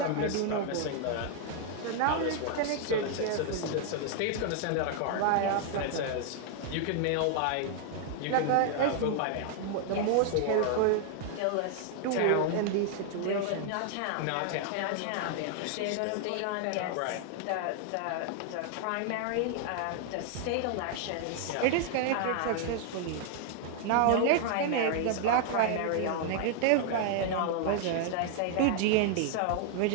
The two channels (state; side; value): different; both; correlation 0.00